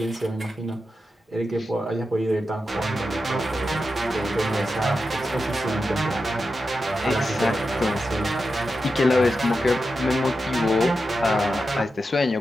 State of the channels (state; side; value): normal; both; correlation 0.89